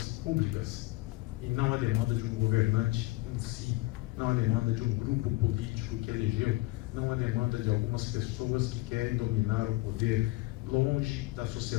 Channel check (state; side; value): quieter; right; 20.6 dB